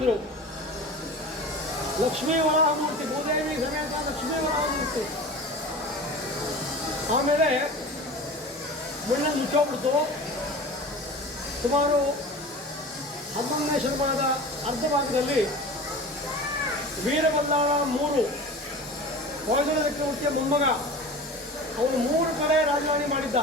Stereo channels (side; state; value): both; normal; correlation 0.35